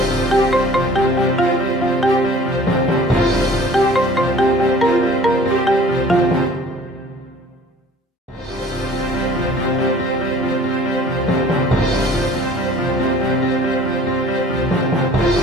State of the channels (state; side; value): normal; both; correlation 0.49